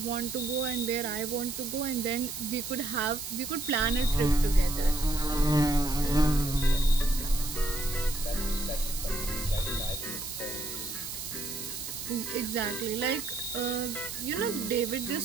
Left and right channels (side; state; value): right; noise; hiss, 7 dB below the sound